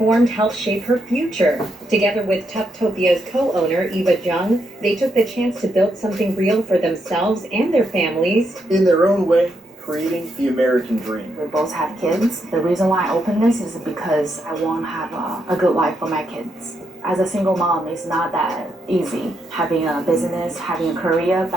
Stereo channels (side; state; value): both; normal; correlation 0.80